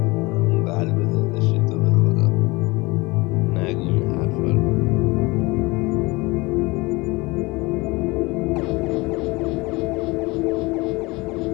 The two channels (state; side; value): quieter; right; 23.7 dB